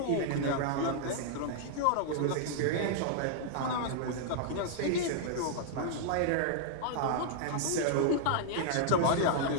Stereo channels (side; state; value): both; different; correlation -0.01